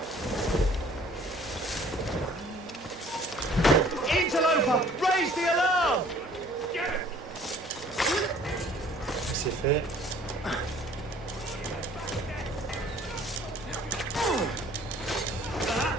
Interloper! Raise the alarm! C'est fait.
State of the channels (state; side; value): normal; both; correlation 0.54